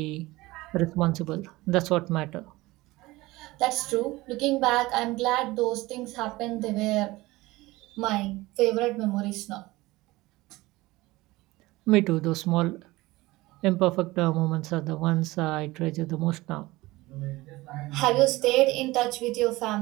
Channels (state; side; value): quieter; left; 19.9 dB